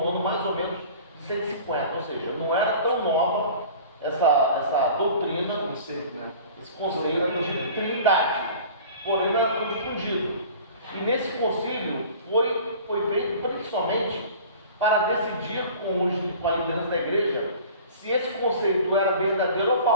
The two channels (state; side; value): inverted; both; correlation -0.43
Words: ano mais ou menos de 150, ou seja, não era tão nova essa doutrina, Né? esse conceito de Trindade, porém não era tão difundido. E nesse concílio foi feito principalmente para decidir com a liderança da igreja se esse conceito era verdadeiro ou